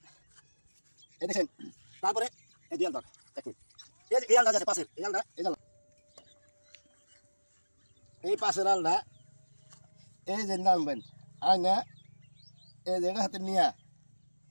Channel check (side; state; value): both; inverted; correlation -1.00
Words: এই দেখেন তারপরে এই দুই আল ধর দেখুন, এই যে এই আলটা আছে পাশের এই আলটা, এই জাল এই পাশের আলটা এই যে নামবেন আর না এই জায়গা হাতে নিয়ে